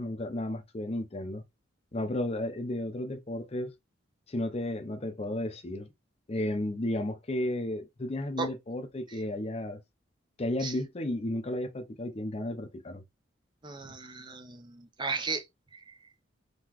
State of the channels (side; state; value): both; normal; correlation 0.59